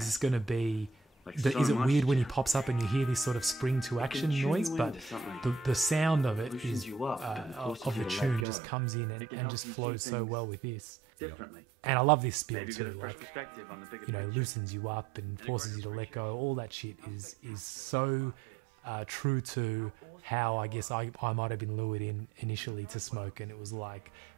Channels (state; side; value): drops out; left; at 8.5 s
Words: this going to be... is it weird when he pops up and you hear this sort of spring to action noise? But the sound of it is of the tune just comes in and just flows so well with this. Differently. And I love this spiel Maybe get a too. fresh Like, perspective on the bigger picture. loosens you up and forces you to let go. All that shit is so true to how I guess I might have been lured in initially to smoke, and it was like,